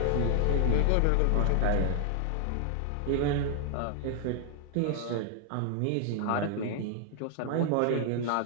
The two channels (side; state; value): both; different; correlation 0.00